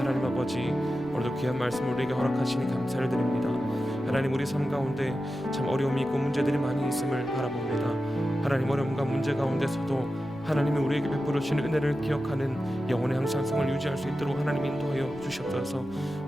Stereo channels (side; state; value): left; noise; rumble, 22 dB below the sound